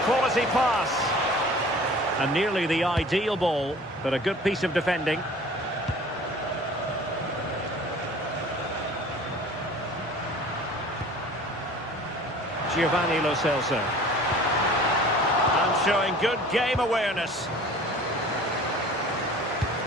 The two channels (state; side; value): normal; both; correlation 0.45